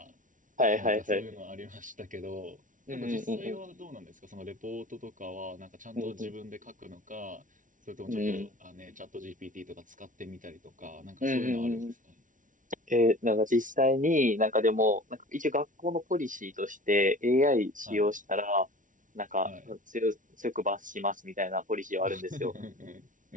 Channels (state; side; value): late; left; 0.38 ms